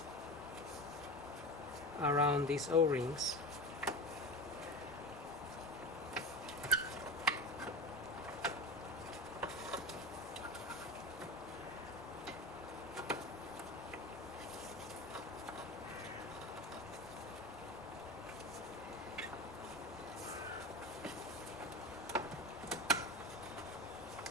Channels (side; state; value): both; normal; correlation 0.28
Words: around these O-rings.